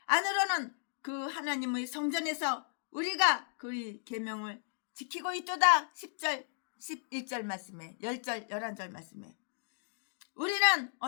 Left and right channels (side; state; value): right; silent; digital silence